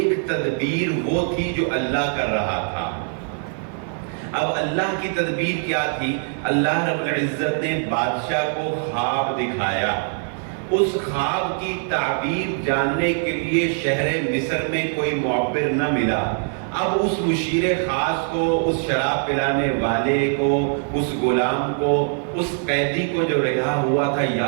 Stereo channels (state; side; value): silent; left; 56 dB below the other